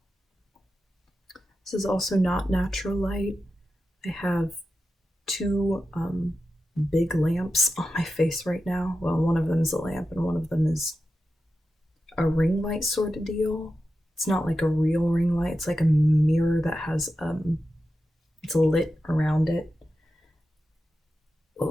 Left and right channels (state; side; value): normal; both; correlation 0.90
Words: This is also not natural light. I have two big lamps on my face right now. Well, one of them is a lamp and one of them is a ring light sort of deal. It's not like a real ring light. It's like a mirror that has it's lit around it.